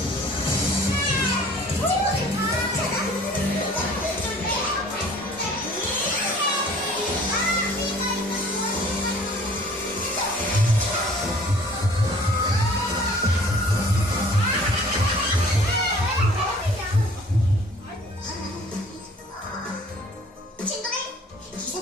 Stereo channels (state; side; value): normal; both; correlation 0.51